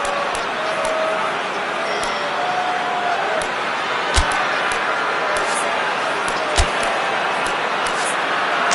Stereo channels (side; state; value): both; identical; correlation 1.00